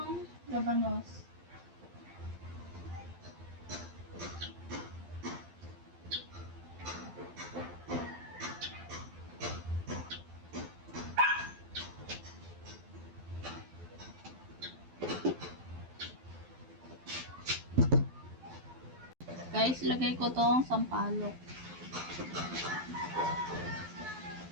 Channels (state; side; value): late; left; 12 ms